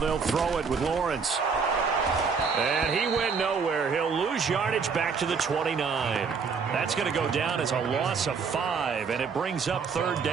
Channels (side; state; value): left; quieter; 5.5 dB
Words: throw it with Lawrence. And he went nowhere. He'll lose yardage back to the 29. That's going to go down as a loss of 5, and it brings up 3rd